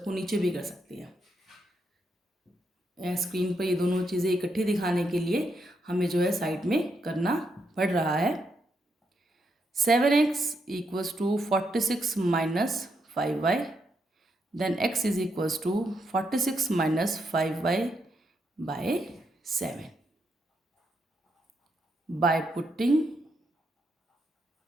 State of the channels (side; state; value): both; normal; correlation 0.80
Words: को नीचे भी कर सकते हैं. स्क्रीन पर ये दोनों चीज़ें इकट्ठी दिखाने के लिए हमें जो है साइड में करना पड़ रहा है. 7x equals to 46 minus 5y, then x is equals to 46 minus 5y by 7. By putting